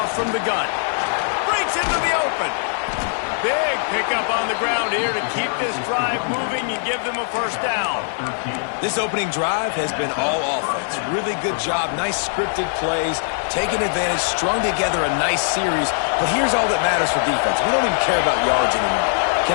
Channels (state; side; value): silent; right; 60 dB below the other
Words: from the gun. Breaks into the open. Big pickup on the ground here to keep this drive moving and give them a first down. This opening drive has been all offense. Really good job. Nice scripted plays. Taking advantage. Strung together a nice series. But here's all that matters for defense. We don't even care about yards anymore.